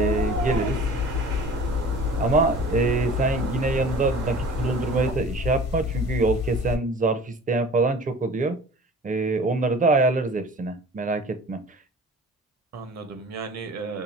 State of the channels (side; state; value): both; normal; correlation 0.43